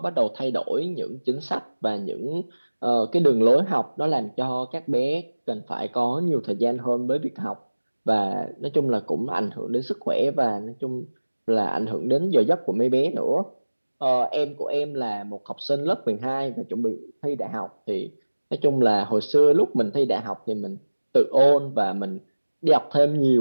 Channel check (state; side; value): inverted; both; correlation -1.00